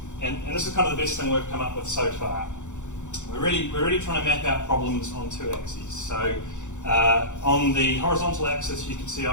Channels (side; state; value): right; late; 0.85 ms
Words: And this is kind of the best thing we've come up with so far. We're really trying to map out problems on 2 axes. So on the horizontal axis, you can see